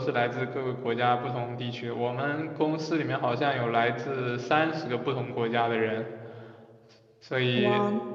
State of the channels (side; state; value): both; identical; correlation 1.00